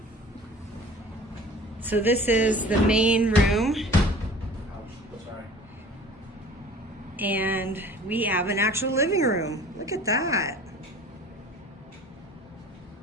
So this is the main room. Sorry. And we have an actual living room. Look at that.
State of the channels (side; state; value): both; normal; correlation 0.45